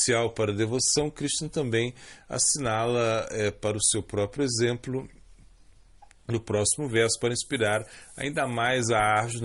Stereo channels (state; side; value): identical; both; correlation 1.00